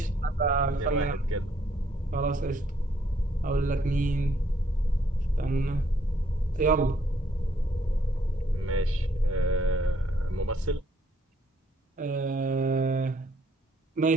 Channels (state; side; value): normal; both; correlation 0.68